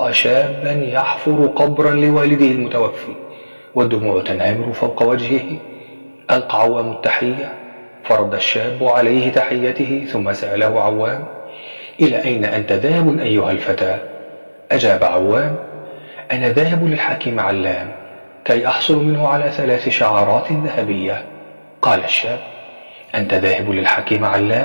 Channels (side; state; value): both; inverted; correlation -1.00